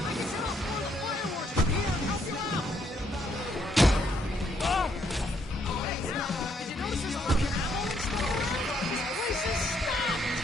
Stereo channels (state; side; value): normal; both; correlation 0.72